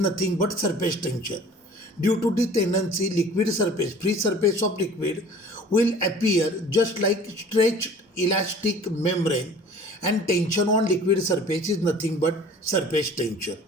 but surface tension. Due to the tendency, liquid surface, free surface of liquid will appear just like stretched elastic membrane, and tension on liquid surface is nothing but surface tension.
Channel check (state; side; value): normal; both; correlation 0.47